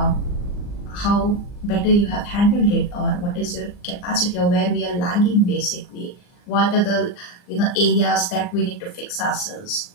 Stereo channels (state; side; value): late; right; 39 ms